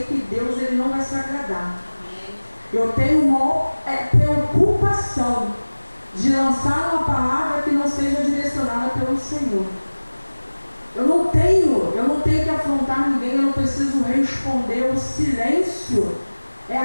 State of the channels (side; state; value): both; inverted; correlation -1.00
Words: que Deus ele não vai se agradar. Eu tenho uma preocupação de lançar uma palavra que não seja direcionada pelo Senhor. Eu não tenho que afrontar ninguém, eu não preciso responder. O silêncio é